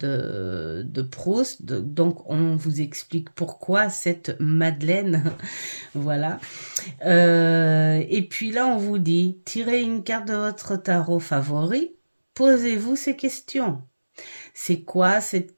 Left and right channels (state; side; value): inverted; both; correlation -1.00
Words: Proust, donc on vous explique pourquoi cette Madeleine, voilà. Et puis là on vous dit, tirez une carte de votre tarot favori, posez-vous ces questions. C'est quoi